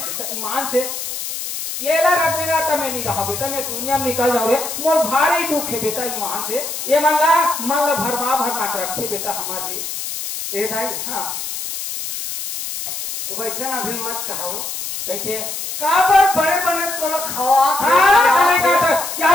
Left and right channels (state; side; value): noise; left; hiss, 6 dB below the sound